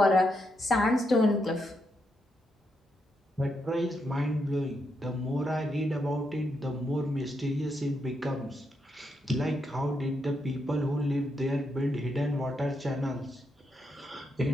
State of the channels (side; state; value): both; normal; correlation 0.81